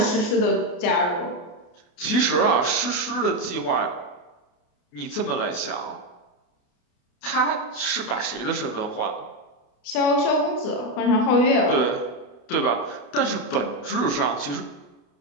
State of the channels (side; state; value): right; late; 28 ms